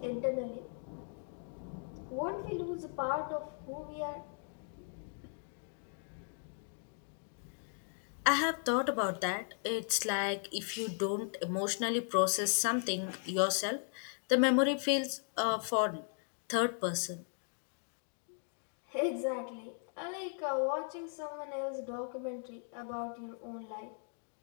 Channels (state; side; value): silent; right; 53 dB below the other